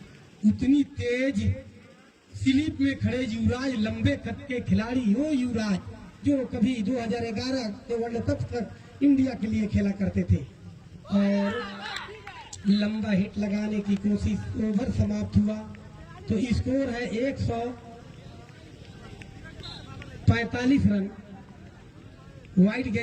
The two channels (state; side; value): identical; both; correlation 1.00